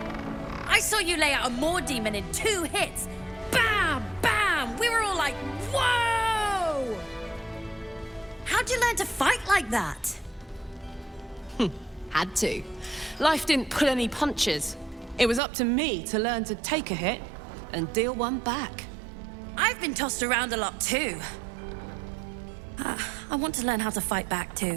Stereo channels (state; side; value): drops out; left; at 15.4 s